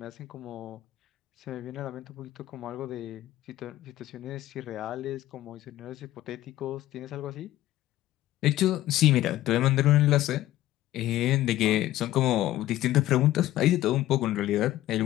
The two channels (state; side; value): quieter; right; 14.8 dB